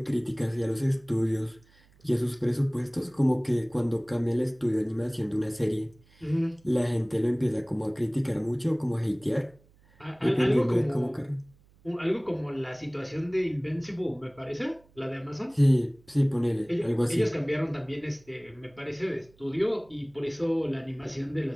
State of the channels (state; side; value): noise; right; hum, 30 dB below the sound